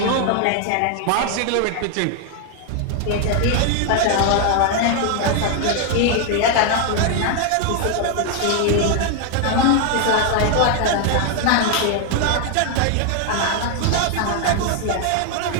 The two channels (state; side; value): different; both; correlation 0.00